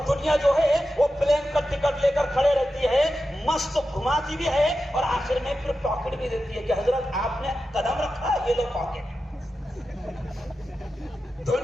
دنیا جو ہے وہ پلین کا ٹکٹ لے کر کھڑے رہتی ہے, مست گھماتی بھی ہے اور آخر میں پھر پاکٹ بھی دیتی ہے کہ حضرت آپ نے قدم رکھا, یہ لو پاکٹ.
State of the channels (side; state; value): both; normal; correlation 0.91